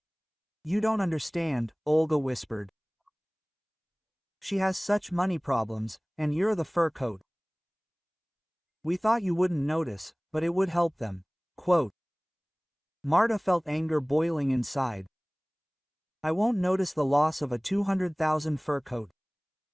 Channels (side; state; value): both; identical; correlation 1.00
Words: "You don't understand," Olga whispered. "She has such money problems, and you're the fur coat. We thought you wouldn't notice, but it would help them." Quote. Marta felt anger boiling inside. "I won't notice the loss of a 200,000 fur coat."